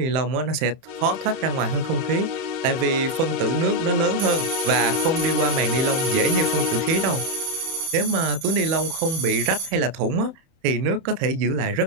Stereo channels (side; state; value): left; late; 30 ms